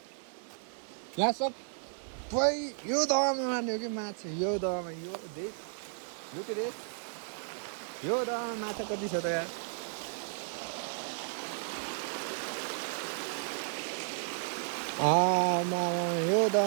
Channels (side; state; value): left; silent; 55 dB below the other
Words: यहाँ सबै यो दहमा मार्ने हो कि माछा। यो दहमा यो देख यो के रे यो दहमा माछा कति छ त यार। यो